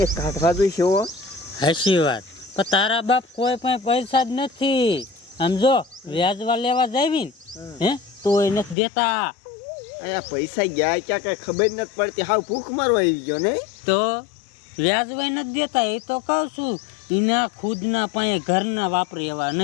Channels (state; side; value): drops out; right; at 8.8 s